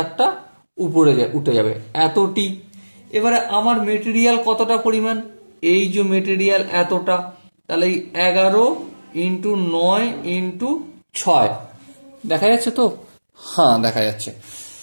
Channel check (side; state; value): both; inverted; correlation -1.00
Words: উপরে উঠে যাবে, এতটি। এবারে আমার মেটেরিয়াল কতটা পরিমাণ, এই যে মেটেরিয়াল এতটা, তাহলে 11 × 9 × 6 দেখা যাচ্ছে তো? হ্যাঁ দেখা যাচ্ছে।